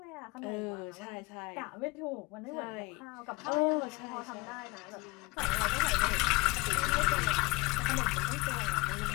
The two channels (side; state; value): right; quieter; 24.5 dB